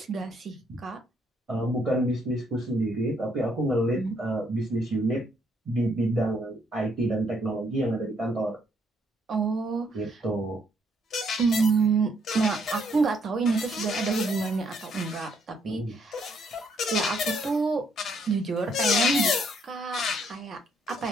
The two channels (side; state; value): both; normal; correlation 0.70